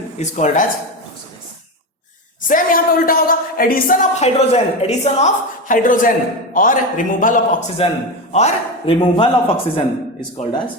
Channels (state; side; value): normal; both; correlation 0.18